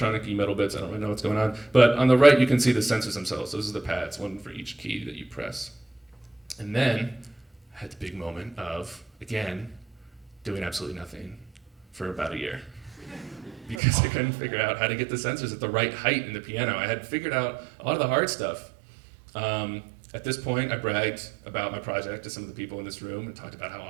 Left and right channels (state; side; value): drops out; left; at 13.8 s